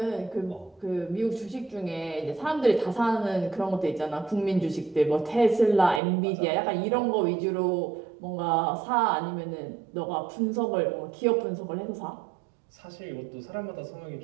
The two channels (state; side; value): drops out; left; at 6.0 s